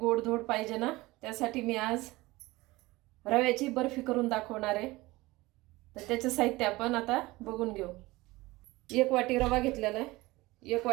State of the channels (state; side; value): quieter; left; 20.3 dB